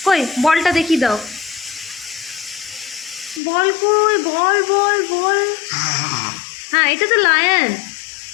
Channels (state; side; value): drops out; right; at 3.4 s